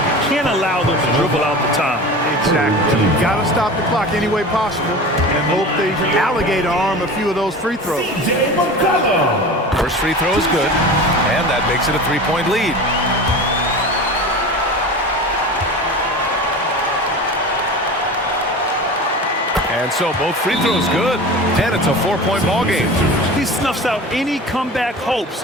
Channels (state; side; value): normal; both; correlation 0.33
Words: can't allow them to dribble out the time. Exactly. You got to stop the clock any way possible and hope they alligator arm a few of those free throws. First free throw is good, and that makes it a three-point lead. And so both free throws good, and it's a 4-point ball game. He snuffs out any comeback hopes